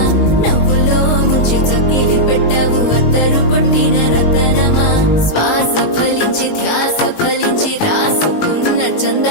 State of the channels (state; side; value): late; right; 19 ms